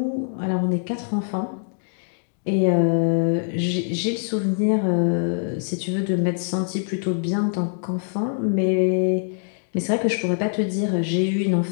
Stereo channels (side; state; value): right; silent; digital silence